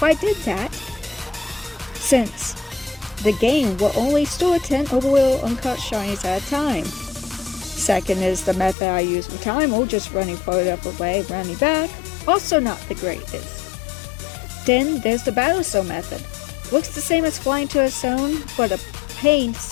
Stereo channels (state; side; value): drops out; right; at 8.8 s